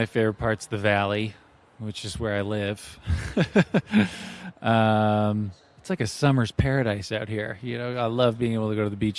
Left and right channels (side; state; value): both; identical; correlation 1.00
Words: favorite part's the valley, which is where I live. It's like a summer's paradise out here. I love being able to go to the